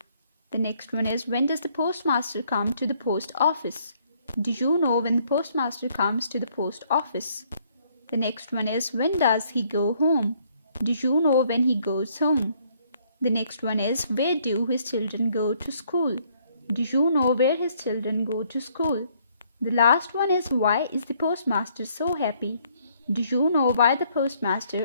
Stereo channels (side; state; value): both; inverted; correlation -0.66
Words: The next one is, when does the postmaster come to the post office? Do you know when the postmaster comes to the post office? The next one is, when does he go home? Do you know when he goes home? The next one is, where do his children go to school? Do you know where his children go to school? The last one is, why is the postmaster so happy? Do you know why the